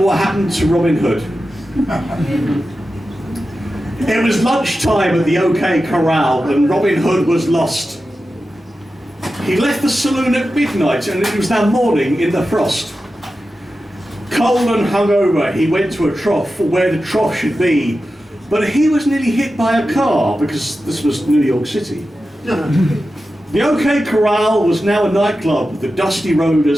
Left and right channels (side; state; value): both; normal; correlation 0.92